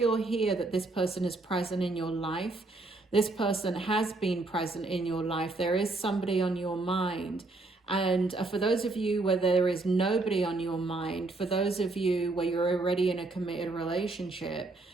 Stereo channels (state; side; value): quieter; left; 3.2 dB